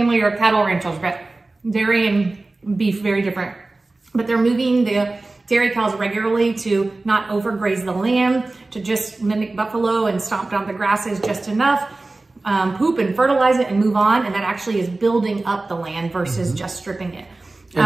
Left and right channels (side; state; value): left; quieter; 3.2 dB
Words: are cattle ranchers, but dairy and beef, very different. But they're moving the dairy cows regularly to not overgraze the land, to just mimic buffalo and stomp down the grasses just enough, poop and fertilize it and move on. And that actually is building up the land versus just stripping it.